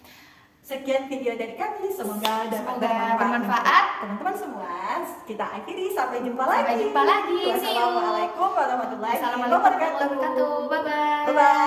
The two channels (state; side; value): identical; both; correlation 1.00